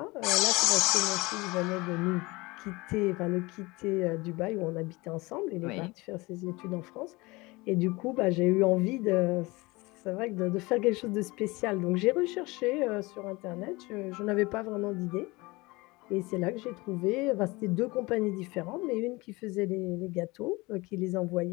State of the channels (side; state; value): right; quieter; 23.2 dB